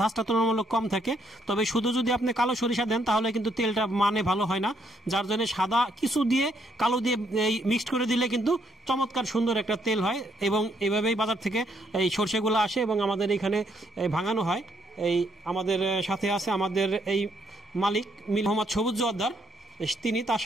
তুলনামূলক কম থাকে। তবে শুধু যদি আপনি কালো সরিষা দেন তাহলে কিন্তু তেলটা মানে ভালো হয় না, যার জন্য সাদা কিছু দিয়ে কালো দিয়ে এই মিক্সড করে দিলে কিন্তু চমৎকার সুন্দর একটা তেল হয়। এবং এইভাবেই বাজার থেকে এই সরষেগুলো আসে এবং আমাদের এখানে ভাঙানো হয়। এই আমাদের সাথে আছে আমাদের এই মালিক মোহাম্মদ সবুজ জোয়ারদার, তিনি, তার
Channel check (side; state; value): both; normal; correlation 0.72